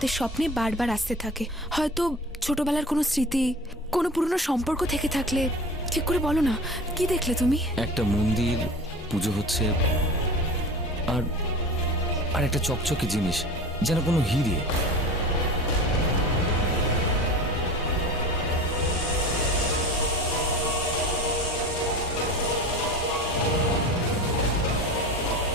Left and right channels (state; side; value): normal; both; correlation 0.35